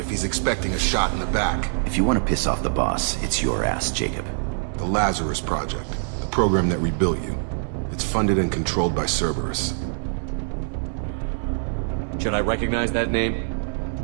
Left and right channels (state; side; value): silent; left; digital silence